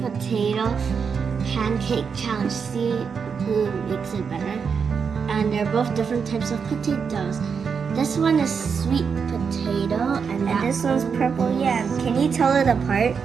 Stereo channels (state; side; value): quieter; left; 6.1 dB